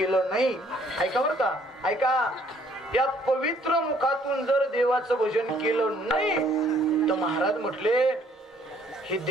नाही, ऐका बरं का, ऐका, या पवित्र मुखातून जर देवाचं भजन केलं नाही तर महाराज म्हटले हे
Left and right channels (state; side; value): normal; both; correlation 0.63